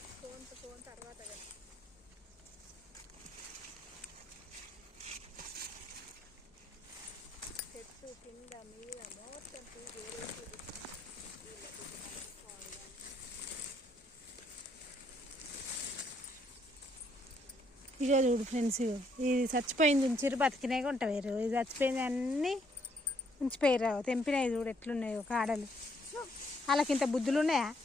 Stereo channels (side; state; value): both; normal; correlation 0.70